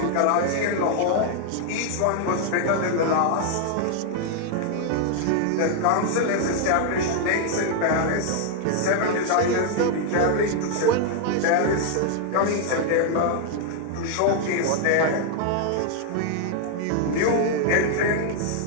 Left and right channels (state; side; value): different; both; correlation 0.00